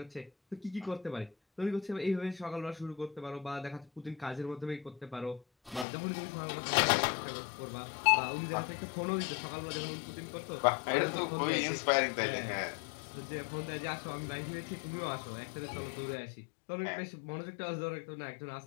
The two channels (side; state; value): right; drops out; at 5.9 s